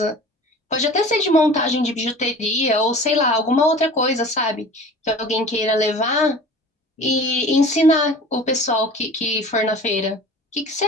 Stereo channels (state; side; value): normal; both; correlation 0.41